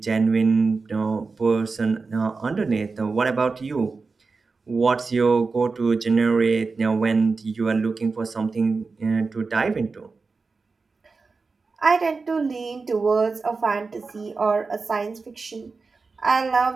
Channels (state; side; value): quieter; left; 4.3 dB